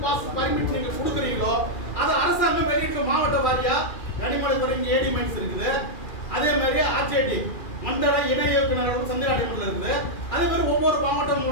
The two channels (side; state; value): right; late; 2.4 ms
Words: பாஸ் பர்மிட் நீங்க கொடுக்குறீங்களோ அதை அரசாங்கம் வெளியிட்டு மாவட்ட வாரியா கனிமவளத்துறை ஏடி மைன்ஸ் இருக்குது. அதே மாதிரி ஆர்ஜேடி மண்டல இணை இயக்குநர்கள் சந்திராடிமன்ல இருந்து அதே மாதிரி ஒவ்வொரு மாவட்டம்